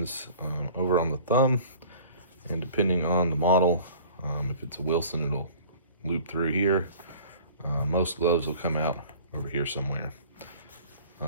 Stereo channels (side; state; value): both; inverted; correlation -0.47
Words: over on the thumb. And depending on the model, if it's a Wilson, it'll loop through here. Most gloves will come out over here somewhere.